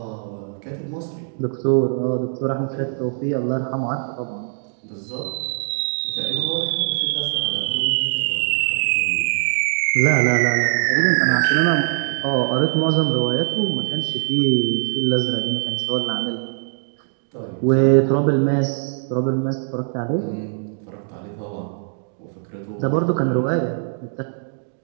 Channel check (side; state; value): left; silent; digital silence